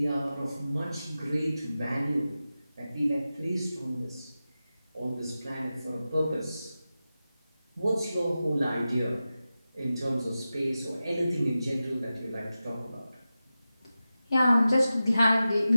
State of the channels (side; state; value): both; inverted; correlation -0.93